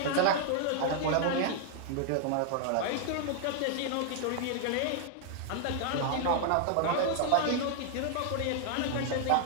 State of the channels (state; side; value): different; both; correlation 0.00